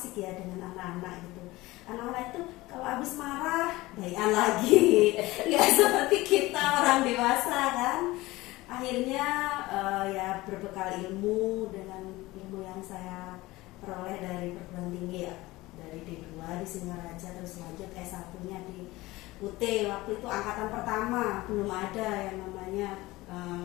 ya dengan anak-anak gitu. Anak-anak itu kalau habis marah bayan lagi, nggak seperti kita orang dewasa kan. Akhirnya ya berbekal ilmu, dengan ilmu yang saya peroleh dari perguruan tinggi ya, dari D2 di Singaraja, terus lanjut S1-nya di UT. Waktu itu angkatan pertama, belum ada yang namanya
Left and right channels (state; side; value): quieter; right; 19.6 dB